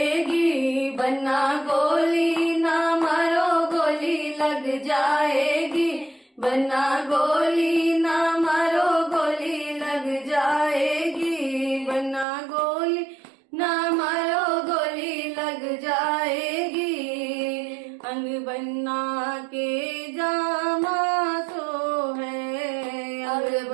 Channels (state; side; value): drops out; left; at 12.2 s